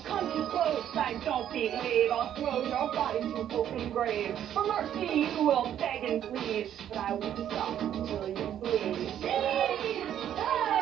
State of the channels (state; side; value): quieter; left; 10.4 dB